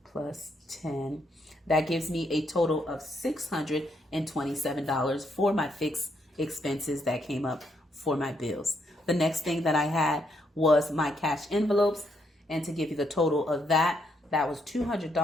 plus 10, that gives me a total of $627 for my fixed expenses that came up for my bills. The next thing that I had was my cash envelopes, and to give you the total of that was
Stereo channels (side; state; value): both; normal; correlation 0.76